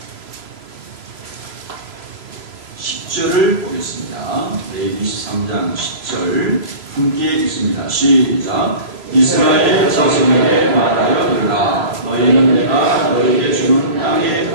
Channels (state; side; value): late; left; 3.0 ms